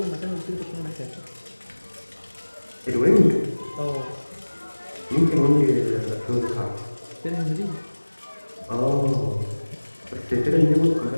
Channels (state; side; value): inverted; both; correlation -1.00